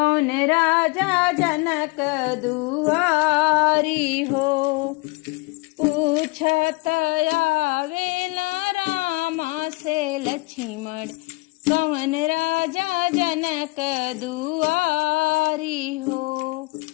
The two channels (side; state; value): right; quieter; 24.7 dB